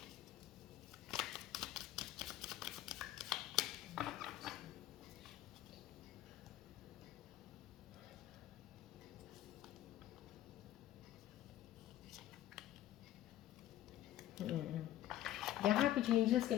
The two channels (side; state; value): right; quieter; 13.2 dB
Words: यहाँ पे जो एंजल्स के